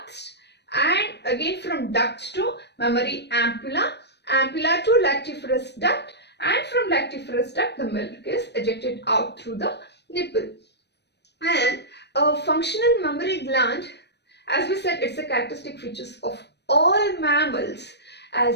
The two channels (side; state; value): right; late; 0.50 ms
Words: and again from ducts to mammary ampulla, ampulla to lactiferous duct, and from lactiferous duct the milk is ejected out through the nipple. And a functional mammary gland, as we said, it's a characteristic features of all mammals,